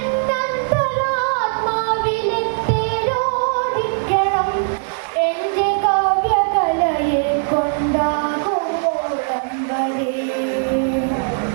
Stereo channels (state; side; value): silent; left; digital silence